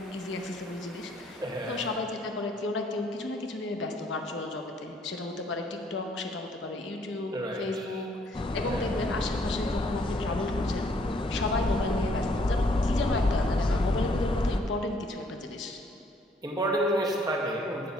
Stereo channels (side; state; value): both; normal; correlation 0.65